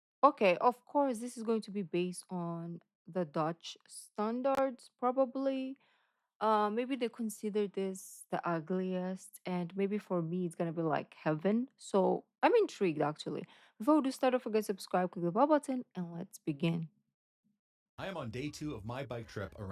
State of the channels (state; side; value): identical; both; correlation 1.00